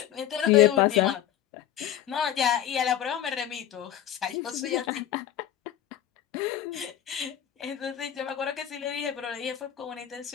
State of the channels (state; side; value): quieter; right; 10.9 dB